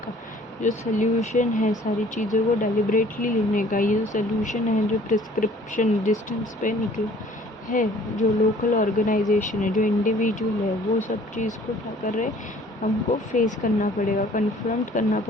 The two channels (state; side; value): normal; both; correlation 0.54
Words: जो सोल्यूशन है सारी चीज़ों को डेलिब्रेटली लेने का, ये जो सोल्यूशन है जो प्रिस्क्रिप्शन डिस्टेंस पे निकला है, जो लोकल ऑर्गेनाइजेशन है, जो इंडिविजुअल है, वो सब चीज़ को क्या कर रहे हैं? हमको फेस करना पड़ेगा, कन्फ्रंट करना